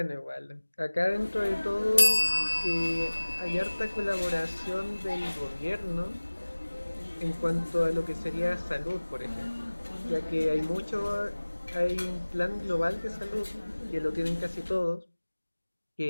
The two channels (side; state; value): both; inverted; correlation -1.00